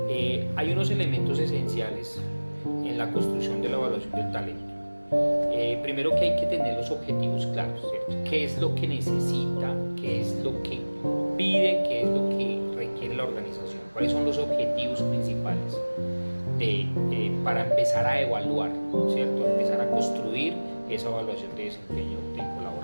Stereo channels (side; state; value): both; inverted; correlation -1.00